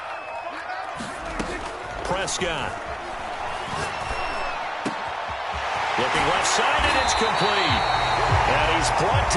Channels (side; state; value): both; identical; correlation 1.00